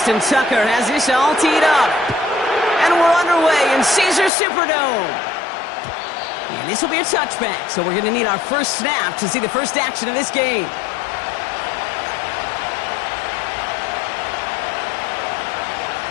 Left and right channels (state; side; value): drops out; right; at 4.3 s